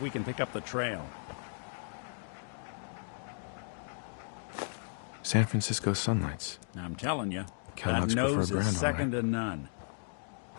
we can pick up the trail. San Francisco sunlights. I'm telling you, Kellogg's that nose preferred brand, is all second to none.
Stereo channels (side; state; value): right; silent; digital silence